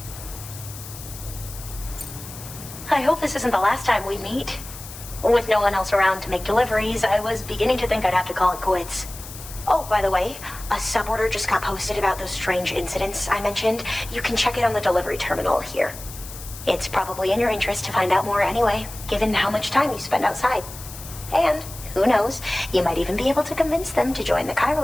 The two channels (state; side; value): noise; left; hiss, 14 dB below the sound